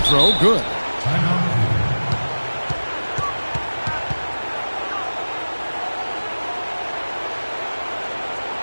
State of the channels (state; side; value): inverted; both; correlation -1.00